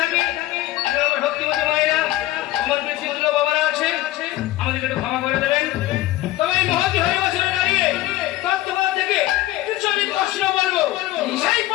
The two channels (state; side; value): quieter; right; 16.1 dB